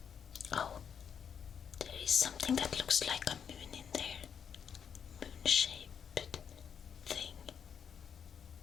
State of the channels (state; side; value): quieter; right; 7.5 dB